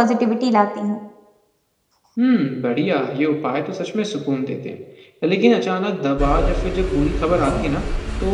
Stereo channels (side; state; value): both; identical; correlation 1.00